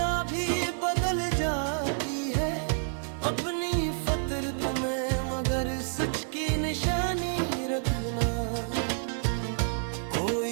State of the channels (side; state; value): left; silent; digital silence